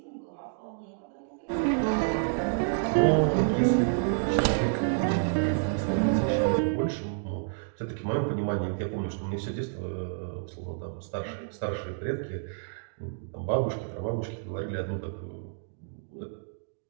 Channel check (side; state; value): left; silent; digital silence